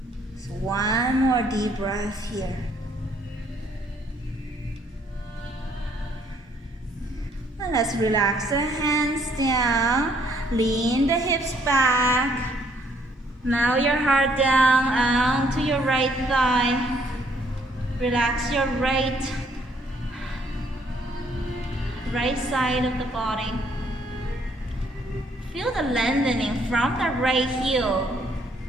So 1 more deep breath here. And let's relax the hands down, lean the hips back. Now your heart down onto your right thigh. Relax your right side of the body. Feel the lengthening from the right heel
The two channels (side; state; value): both; normal; correlation 0.66